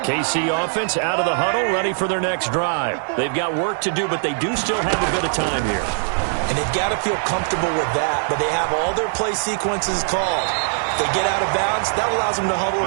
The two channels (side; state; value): left; silent; 62 dB below the other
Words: offense out of the huddle, ready for their next drive. They've got work to do, but they do still have a bit of time here. And they've got to feel comfortable with that, but they have all their play sequences called. If they get out of bounds, that allows them to huddle